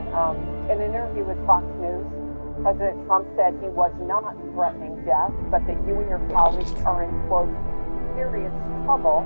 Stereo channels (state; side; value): inverted; both; correlation -1.00